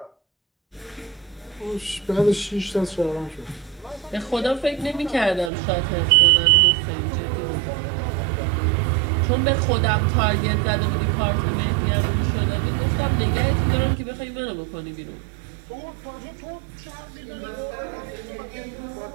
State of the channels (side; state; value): left; drops out; at 5.5 s